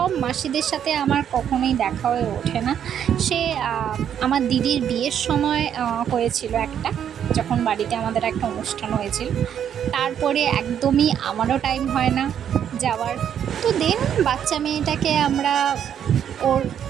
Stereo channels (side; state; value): left; quieter; 9.1 dB